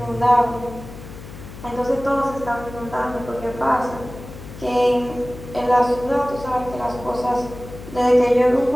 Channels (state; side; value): noise; left; hum, 14 dB below the sound